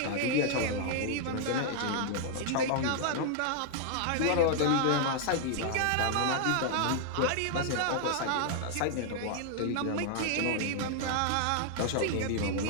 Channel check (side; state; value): both; different; correlation 0.00